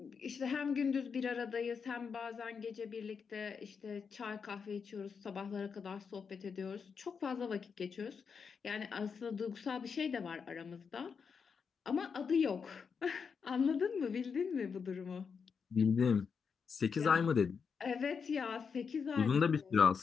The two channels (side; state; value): right; quieter; 6.0 dB